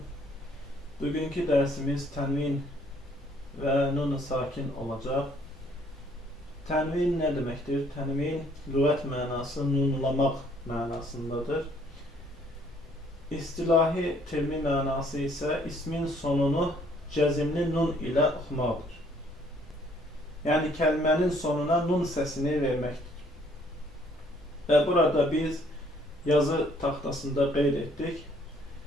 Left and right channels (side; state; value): both; normal; correlation 0.63